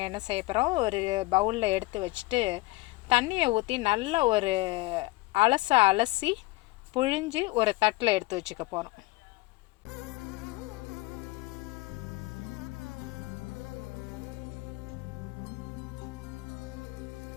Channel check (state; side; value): quieter; right; 21.7 dB